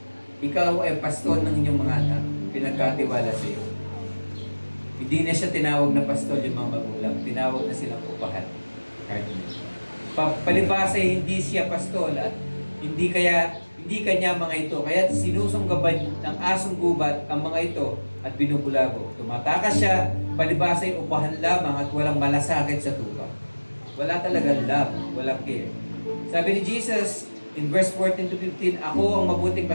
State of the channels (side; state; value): both; inverted; correlation -1.00